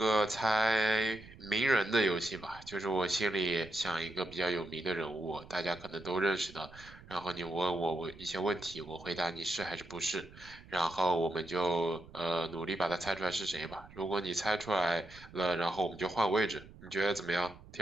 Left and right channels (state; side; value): noise; right; rumble, 19 dB below the sound